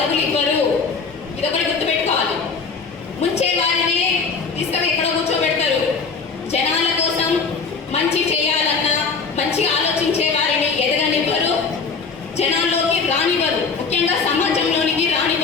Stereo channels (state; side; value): quieter; right; 5.0 dB